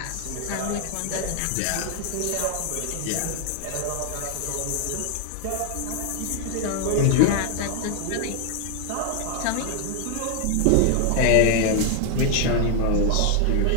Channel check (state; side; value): different; both; correlation 0.00